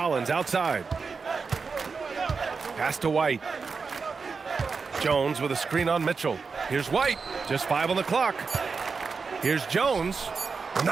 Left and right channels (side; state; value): left; quieter; 4.9 dB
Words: outside. Pass to White. Jones with a screen on Mitchell. Here's White. Just 5 on the clock. Here's Jones.